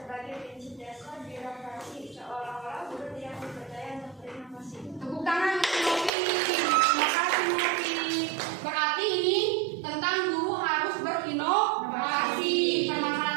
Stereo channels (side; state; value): left; drops out; at 6.1 s